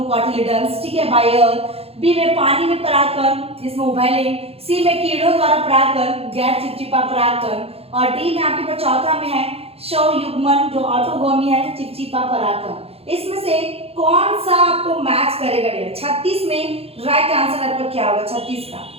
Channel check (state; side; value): late; left; 0.29 ms